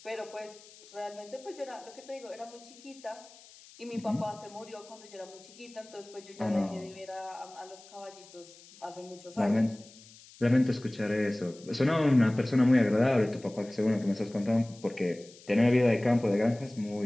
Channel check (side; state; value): left; noise; hiss, 22 dB below the sound